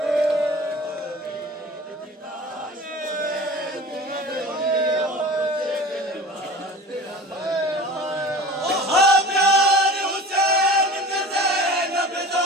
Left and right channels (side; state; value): both; normal; correlation 0.39